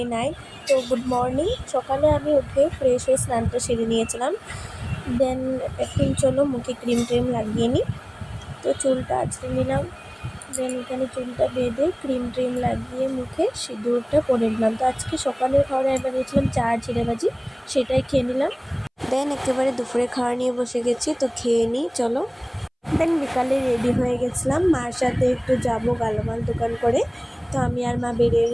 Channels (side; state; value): both; identical; correlation 1.00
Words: 9। তো গুড মর্নিং। সকালে আমি উঠে ফ্রেশ হয়ে স্নানটা সেরে নিয়েছিলাম। দেন এখন চলো মুখে ক্রিম ট্রিম লাগিয়ে নিই। তো চুলটা আঁচড়ে নিলাম। দেন এখানে চুলটা বেঁধে ক্রিম ট্রিম লাগিয়ে মুখে সিঁদুরটা পরে নিলাম। তো আজকে সকালের খাবারে আমি বানিয়েছিলাম চা আর জিরে ভাজি, সেটাই খেয়ে নিলাম। দেন একেবারে দুপুরে খাওয়া নিয়ে বসে গেছি, তো খেয়ে নিই চলো। দেন বিকালে রেডি হয়ে গেছিলাম, মার সাথে একটু যাব গালামাল দোকান করে। তো আমি আর মা বেরিয়ে